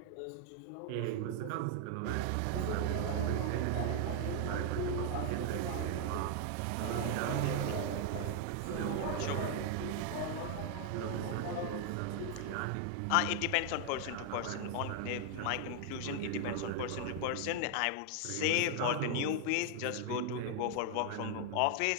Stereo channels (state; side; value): different; both; correlation 0.00